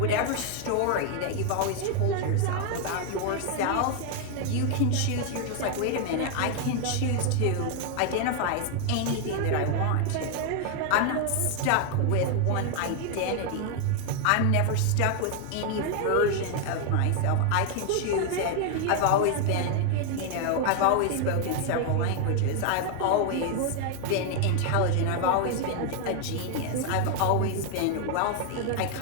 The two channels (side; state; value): both; different; correlation 0.00